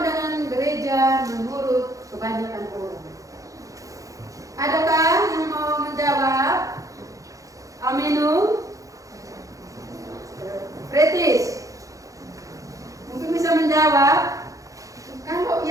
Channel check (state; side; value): late; left; 0.16 ms